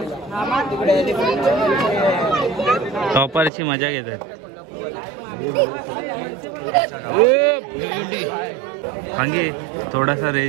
टॉपरची मजा घेतात. भांगे थोडासा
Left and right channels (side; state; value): left; drops out; at 3.5 s